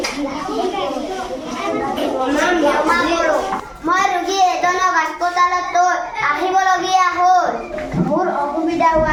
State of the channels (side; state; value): both; identical; correlation 1.00